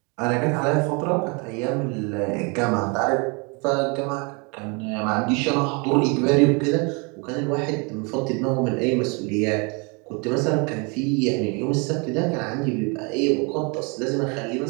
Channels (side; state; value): left; quieter; 31.9 dB